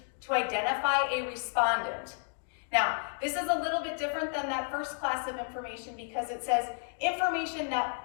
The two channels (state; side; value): silent; right; 57 dB below the other